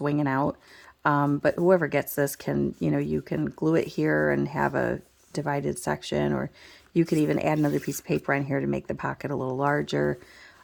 out. But whoever gets this can, you can glue it here and have a divided section, or you could even add another piece of paper on here to make the pocket a little larger.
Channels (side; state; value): both; identical; correlation 1.00